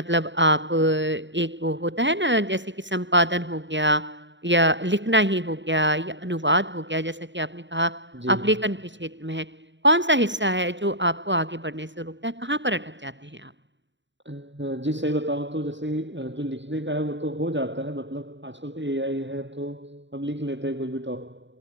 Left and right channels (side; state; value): left; late; 0.53 ms